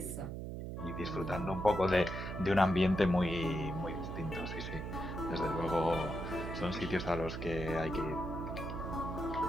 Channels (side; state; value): right; noise; hum, 6 dB below the sound